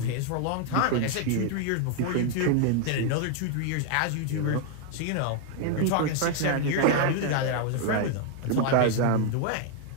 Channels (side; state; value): both; different; correlation 0.00